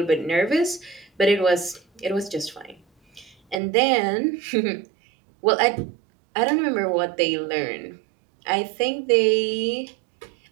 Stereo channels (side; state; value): left; drops out; at 3.6 s